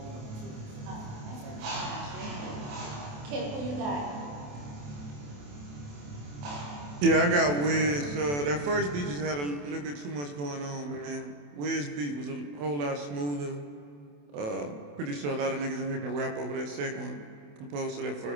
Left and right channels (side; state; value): left; late; 27 ms